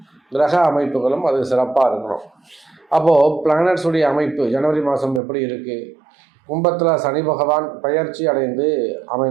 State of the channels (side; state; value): left; drops out; at 5.2 s